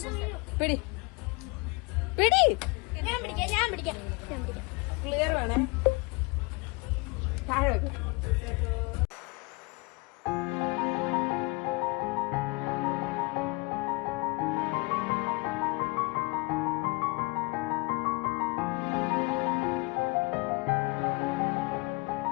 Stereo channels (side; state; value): right; quieter; 27.4 dB